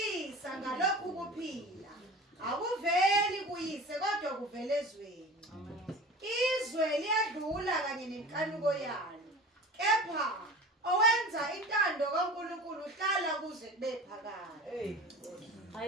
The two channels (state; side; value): normal; both; correlation 0.37